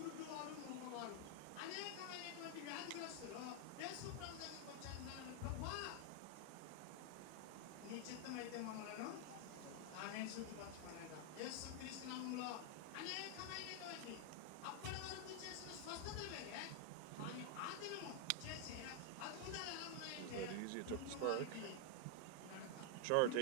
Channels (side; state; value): both; different; correlation 0.00